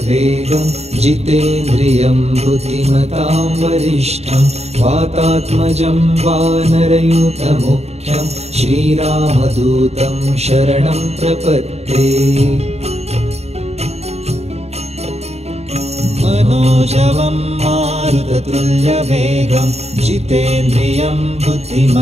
जितेन्द्रियं बुद्धिमतां वरिष्ठं वातात्मजं वानरयूथमुख्यं श्रीरामदूतं शरणं प्रपद्ये। मनोजवं मारुततुल्यवेगं जितेन्द्रियं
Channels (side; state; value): left; late; 0.31 ms